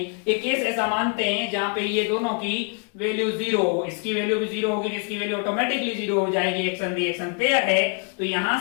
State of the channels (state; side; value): quieter; right; 38.6 dB